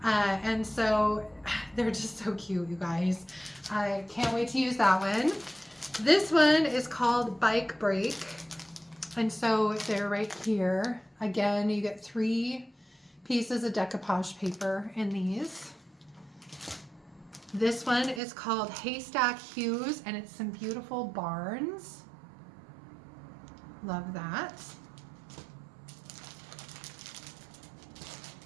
And so they're just so cute, you guys. I can't wait to use that one. This one is called Bike Break. And so they're right here. Again, you get 3 pieces of decoupage paper in these. This one is called Haystack Hues, and it's some beautiful barns. Love that.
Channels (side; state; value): left; drops out; at 18.2 s